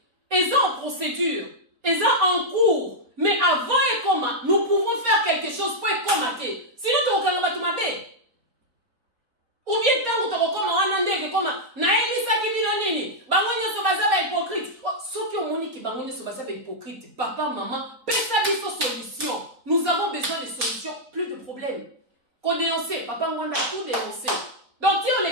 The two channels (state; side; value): late; left; 4.2 ms